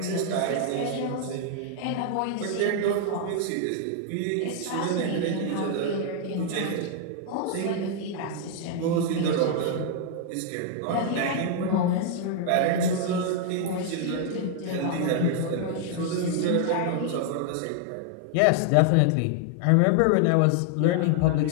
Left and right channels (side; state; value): both; different; correlation 0.00